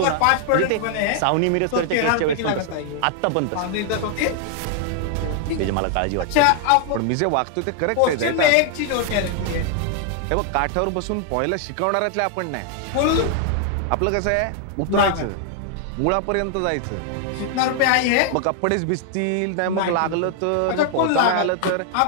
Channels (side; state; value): both; different; correlation 0.00